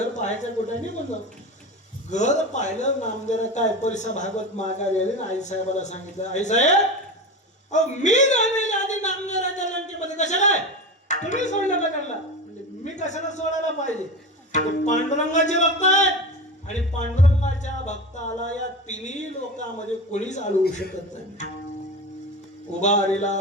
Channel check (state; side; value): normal; both; correlation 0.26